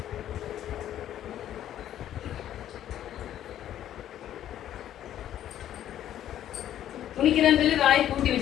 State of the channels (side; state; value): right; quieter; 11.5 dB